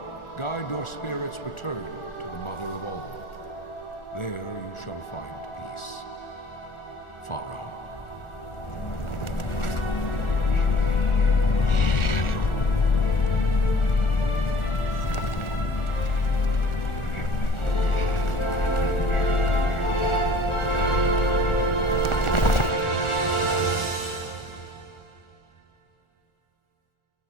guide your spirits return to the Mother of all. There you shall find peace. Pharaoh.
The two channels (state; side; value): late; right; 1.4 ms